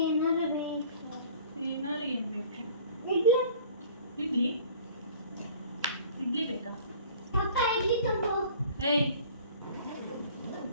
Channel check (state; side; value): inverted; both; correlation -0.48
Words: ಏನಾರು ಬೇಕು. ಏನಾರು ಏನು ಬೇಕು? ಇಡ್ಲಿ ಇಡ್ಲಿ ಬೇಕಾ? ಅಪ್ಪ ಇಡ್ಲಿ ತಗೋ. ಏಯ್,